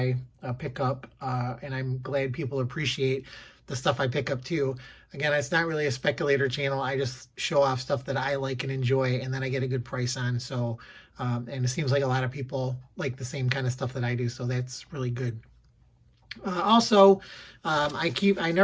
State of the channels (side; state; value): both; identical; correlation 1.00